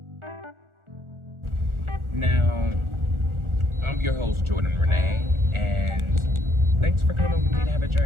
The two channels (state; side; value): late; left; 1.4 ms